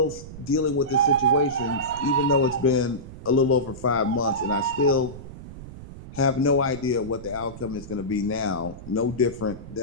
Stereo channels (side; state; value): right; noise; rumble, 14 dB below the sound